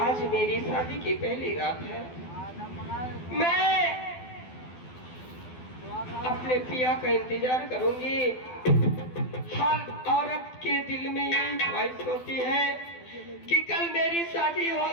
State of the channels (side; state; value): right; late; 12 ms